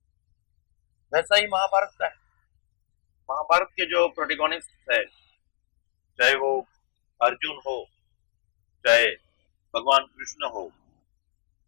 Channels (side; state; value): right; silent; digital silence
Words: वैसा ही महाभारत का है। महाभारत के जो प्रोटेगोनिस्ट है, चाहे वो अर्जुन हो, चाहे भगवान कृष्ण हो,